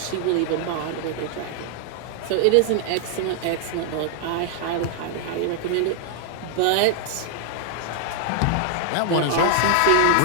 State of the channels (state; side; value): different; both; correlation 0.00